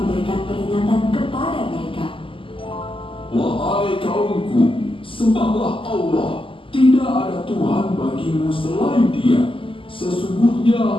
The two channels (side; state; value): right; late; 0.25 ms